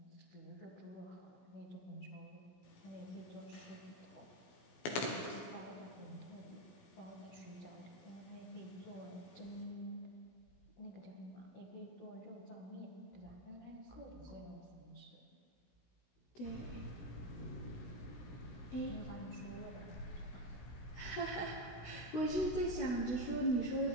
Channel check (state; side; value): late; right; 17 ms